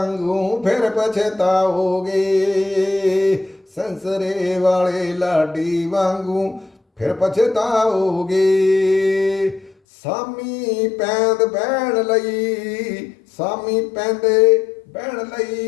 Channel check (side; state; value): right; drops out; at 9.8 s